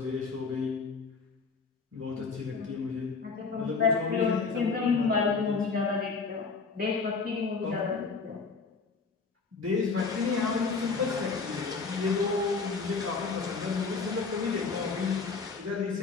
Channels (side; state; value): right; quieter; 4.7 dB